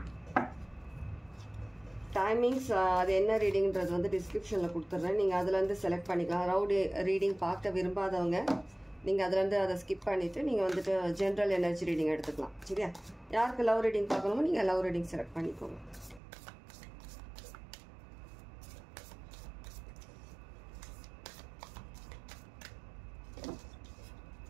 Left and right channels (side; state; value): left; drops out; at 16.2 s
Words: டைமிங்ஸ் அது என்ன ரீடிங்கிறது வந்து டிஸ்கிரிப்ஷனில் கொடுத்துட்றேன். நீங்கள் அதுலேருந்து செலக்ட் பண்ணிக்கலாம். லவ் ரீடிங் பார்க்க விரும்பாதவங்க நீங்கள் அதுலேருந்து அதை ஸ்கிப் பண்ணிவிட்டு நீங்கள் வந்துட்டு ஜென்ரல் எனர்ஜி ரீடிங் எடுத்துக்கலாம். சரியா? யாருக்கு லவ் ரீடிங் பார்க்கணுமோ நீங்கள் லவ் ரீடிங் செலக்ட் பண்ணிக்கோங்க.